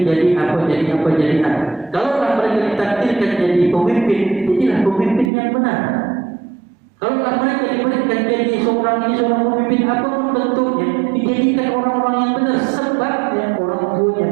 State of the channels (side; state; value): left; drops out; at 5.3 s